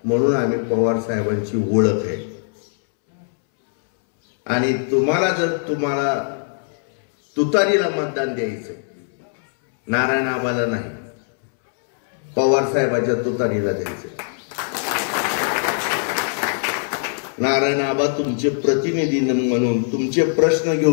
म्हणून आम्ही पवार साहेबांची ओळख आहे. आणि तुम्हाला तुतारीला मतदान द्यायचं, नारायण आबाला नाही, पवार साहेबांच्या तुतारीला द्यायचं. नारायण आबा तुमचे प्रतिनिधी म्हणून तुमचे प्रश्न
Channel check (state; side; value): silent; right; 64 dB below the other